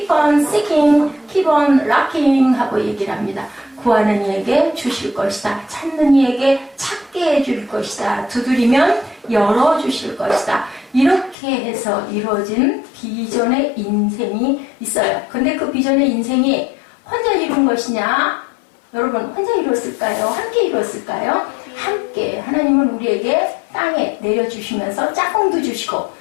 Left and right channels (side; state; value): right; drops out; at 11.4 s